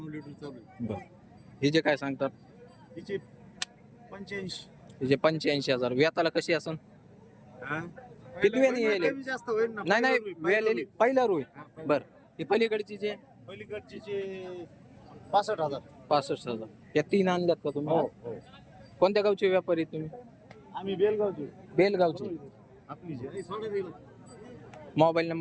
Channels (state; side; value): identical; both; correlation 1.00